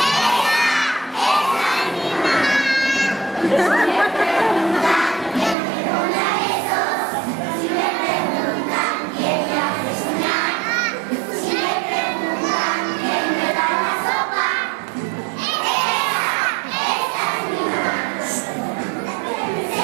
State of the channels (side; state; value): left; drops out; at 5.6 s